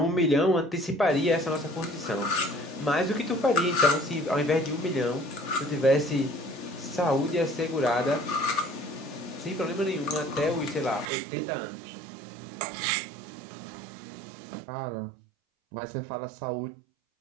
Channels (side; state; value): left; drops out; at 11.1 s